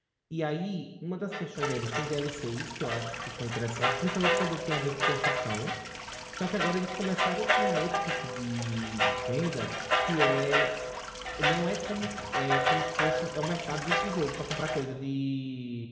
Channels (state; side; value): identical; both; correlation 1.00